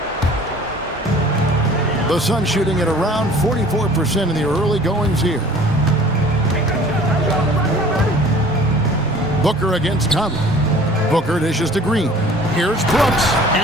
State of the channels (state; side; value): normal; both; correlation 0.49